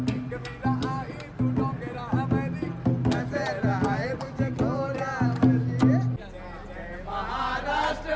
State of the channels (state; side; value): identical; both; correlation 1.00